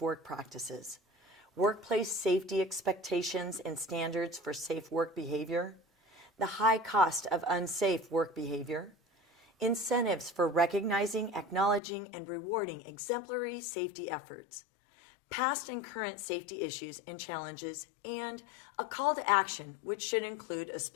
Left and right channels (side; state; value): right; drops out; at 11.8 s